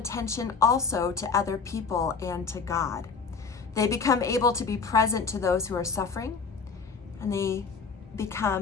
also to other people and to God. They become able to be present to those who are suffering, and they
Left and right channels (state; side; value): quieter; right; 5.2 dB